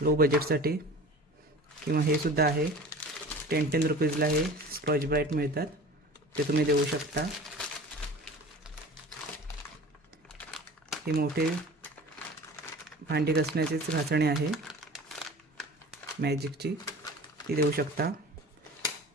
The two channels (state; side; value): normal; both; correlation 0.40